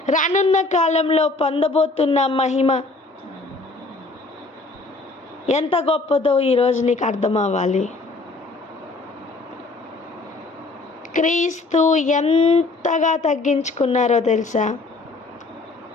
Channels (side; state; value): right; quieter; 3.4 dB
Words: రానున్న కాలంలో పొందబోతున్న మహిమ ఎంత గొప్పదో ఈరోజు నీకు అర్థం అవ్వాలి. క్రీస్తు ఎంతగా తగ్గించుకున్నారో తెలుసా?